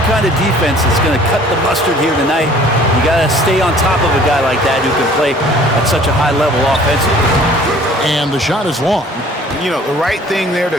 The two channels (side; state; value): both; normal; correlation 0.52